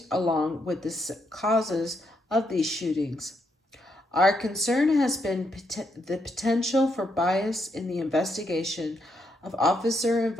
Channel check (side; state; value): both; normal; correlation 0.78